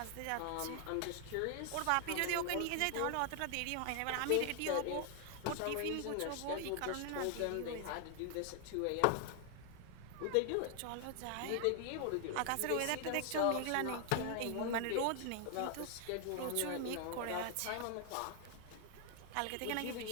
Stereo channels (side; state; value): both; different; correlation 0.00